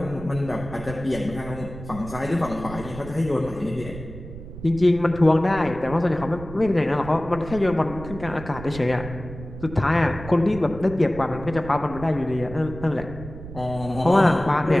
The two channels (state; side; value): noise; right; rumble, 12 dB below the sound